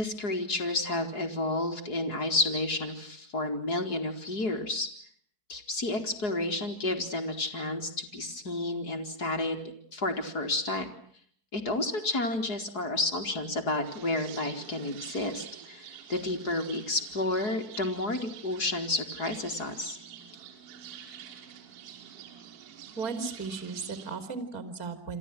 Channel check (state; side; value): late; right; 4.8 ms